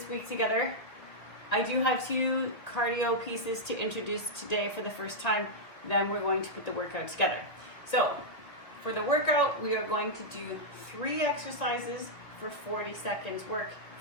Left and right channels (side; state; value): right; late; 2.1 ms